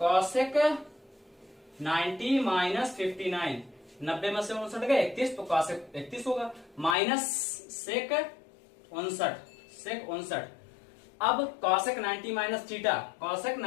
cosec 90 माइनस 59, 90 में से 59 गए 31, तो cosec 31 होगा माइनस sec 59। अब cosec 90 minus theta, cosec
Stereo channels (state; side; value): drops out; right; at 7.0 s